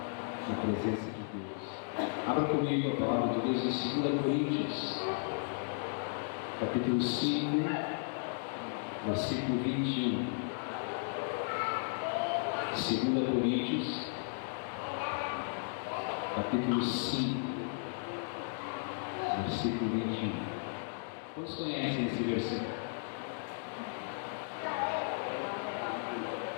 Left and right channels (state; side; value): silent; right; digital silence